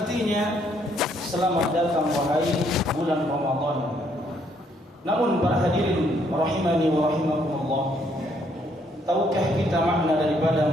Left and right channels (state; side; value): normal; both; correlation 0.69